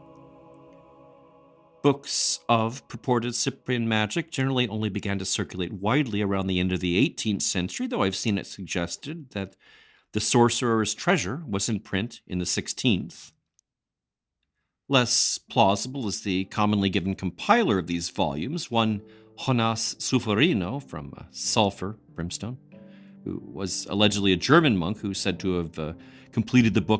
Books of purported Cyprian magic generally only began to circulate widely around the end of the 18th century, though I've seen it suggested that The Sorcerer's Treasure was in print in the 16th. Less plausible is the commonly given compiler of these volumes, one Jonas Sulfurino from Sulfur, Brimstone, who was allegedly a German monk who's said to have completed the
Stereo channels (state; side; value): identical; both; correlation 1.00